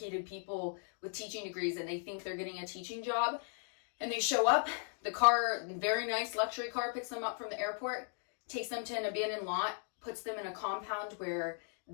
people with teaching degrees, and they think they're getting a teaching job. And they show up, the car, very nice luxury car, picks them up from the airport, takes them to an abandoned lot, puts them in a compound where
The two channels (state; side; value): silent; right; 53 dB below the other